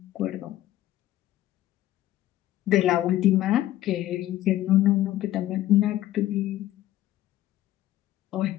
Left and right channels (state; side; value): quieter; right; 14.2 dB